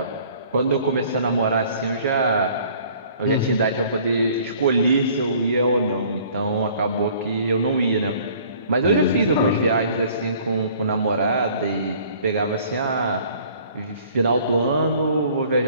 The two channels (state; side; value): inverted; both; correlation -0.54